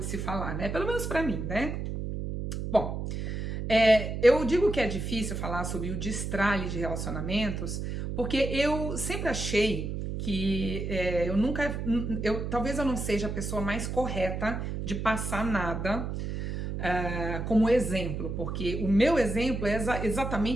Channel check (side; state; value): right; noise; hum, 4 dB below the sound